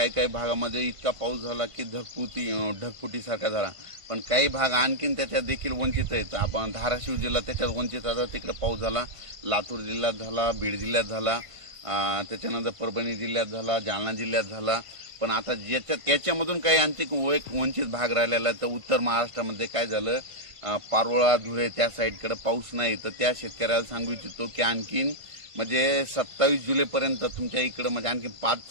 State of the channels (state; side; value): late; left; 1.5 ms